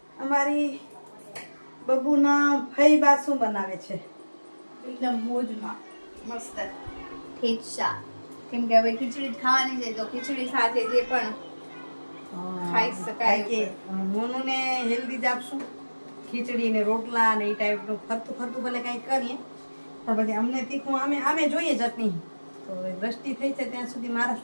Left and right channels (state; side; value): inverted; both; correlation -1.00